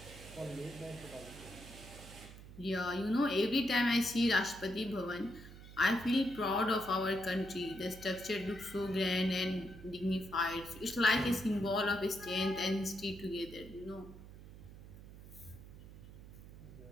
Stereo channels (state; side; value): noise; right; hum, 16 dB below the sound